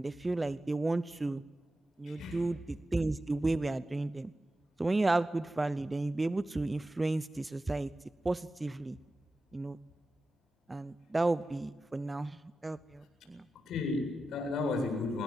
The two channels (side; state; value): both; normal; correlation 0.92